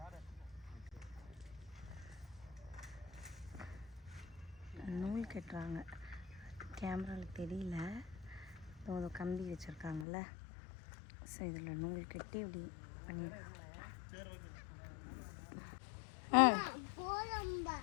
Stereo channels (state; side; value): drops out; right; at 10.1 s